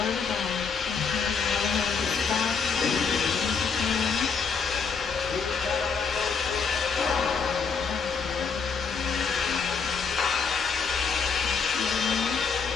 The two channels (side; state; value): right; quieter; 5.6 dB